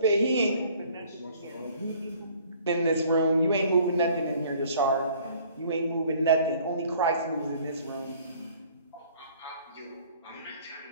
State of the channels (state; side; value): inverted; both; correlation -0.55